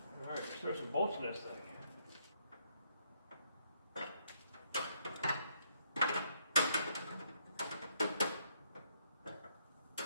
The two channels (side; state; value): both; inverted; correlation -0.72